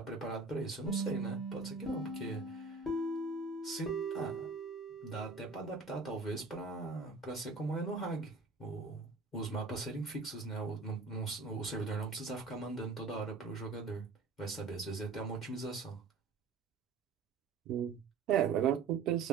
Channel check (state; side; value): quieter; left; 4.3 dB